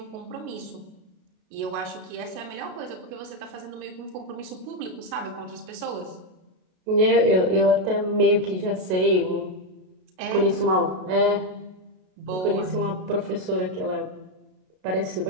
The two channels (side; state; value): left; late; 32 ms